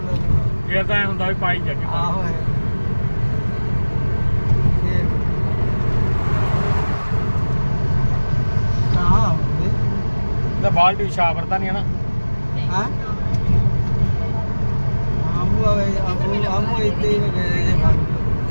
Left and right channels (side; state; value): both; inverted; correlation -1.00